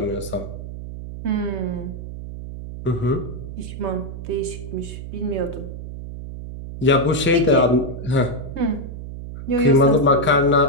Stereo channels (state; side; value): noise; right; hum, 10 dB below the sound